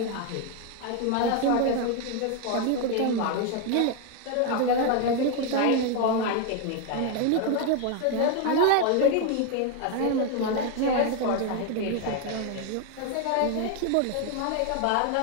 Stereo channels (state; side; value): different; both; correlation 0.01